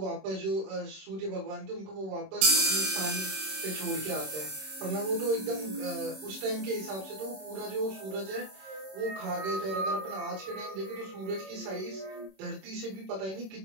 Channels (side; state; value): left; late; 26 ms